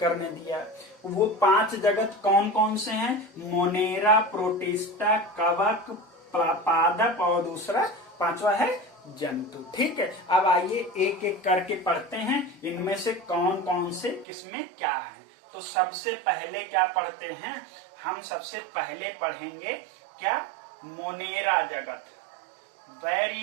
ने दिया। वो 5 जगत कौन कौन से हैं? मोनेरा, प्रोटिस्टा, कवक, पादप और दूसरा 5वां है जंतु, ठीक है। अब आइए एक एक करके पढ़ते हैं, इनमें से कौन कौन से किसमें क्या है। तो सबसे पहले क्या पढ़ते हैं हम? सबसे पहले पढ़ेंगे क्या? मोनेरा जगत, वेरी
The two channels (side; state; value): left; drops out; at 14.2 s